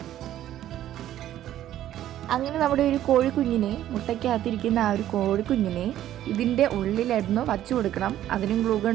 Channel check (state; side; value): quieter; left; 12.4 dB